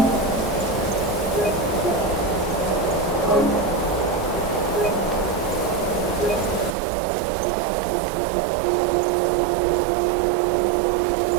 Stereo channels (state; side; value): drops out; left; at 6.8 s